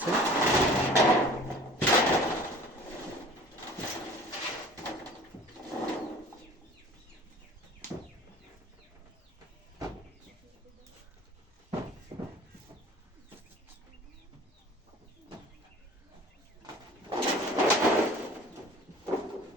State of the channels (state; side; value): normal; both; correlation 0.46